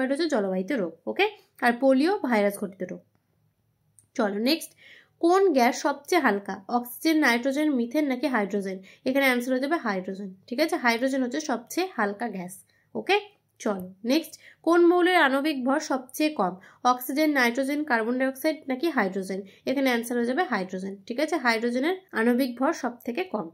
হচ্ছে জলবাহিত রোগ। ওকে, আর পোলিও ভাইরাস ঘটিত রোগ। চলো নেক্সট, কোন গ্যাস সবচেয়ে হালকা? অক্সিজেন, নাইট্রোজেন, মিথেন নাকি হাইড্রোজেন? এখানে অ্যান্সার হয়ে যাবে হাইড্রোজেন। ঠিক আছে, হাইড্রোজেন হচ্ছে সবচেয়ে হালকা গ্যাস। ওকে, চলো নেক্সট, কোন মৌলের আণবিক ভর সবচেয়ে কম? অক্সিজেন, নাইট্রোজেন, কার্বন ডাইঅক্সাইড নাকি হাইড্রোজেন? এখানে অ্যান্সার হয়ে যাবে হাইড্রোজেন। ঠিক আছে, হাইড্রোজেনের আণবিক ভর সব থেকে কম।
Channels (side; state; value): both; identical; correlation 1.00